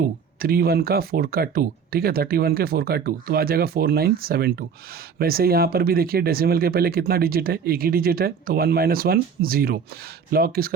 31 का 4 का 2। ठीक है, 31 के 4 का 2 तो आ जाएगा 4972। वैसे यहाँ पर भी देखिए डेसिमल के पहले कितना डिजिट है, एक ही डिजिट है, तो 1 - 1 0। लॉग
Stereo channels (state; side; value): quieter; left; 6.4 dB